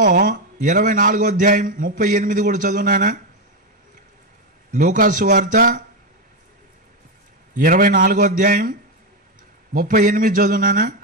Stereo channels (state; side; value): normal; both; correlation 0.08